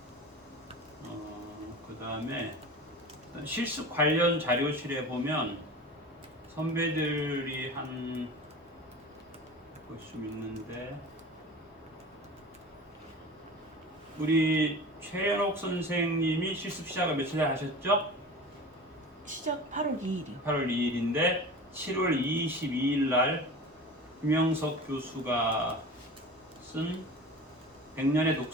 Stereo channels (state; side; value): normal; both; correlation 0.35